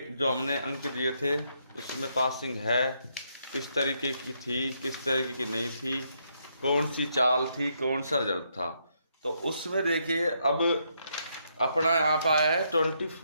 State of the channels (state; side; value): inverted; both; correlation -0.76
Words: जो हमने अंक दिए थे उसमें पासिंग है किस तरीके की थी, किस तरीके की नहीं थी, कौन सी चाल थी, कौन सा रिजल्ट था। तो उसमें देखिए अब अपना यहाँ पे आया है